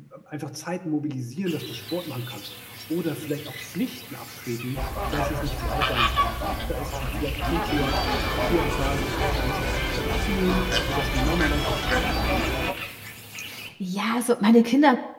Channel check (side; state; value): both; identical; correlation 1.00